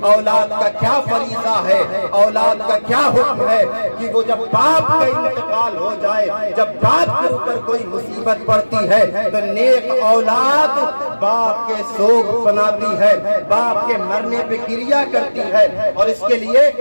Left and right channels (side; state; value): both; inverted; correlation -1.00